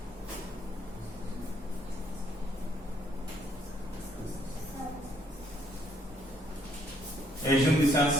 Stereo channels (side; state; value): both; normal; correlation 0.68